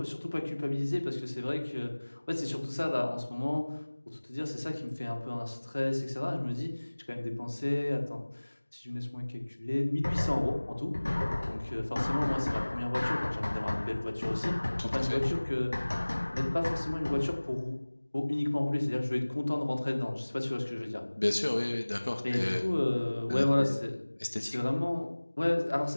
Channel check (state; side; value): inverted; both; correlation -1.00